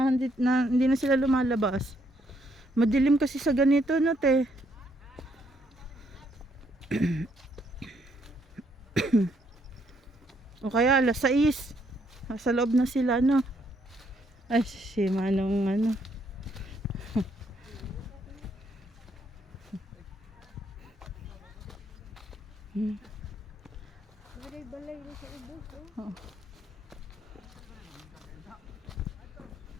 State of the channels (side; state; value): both; normal; correlation 0.72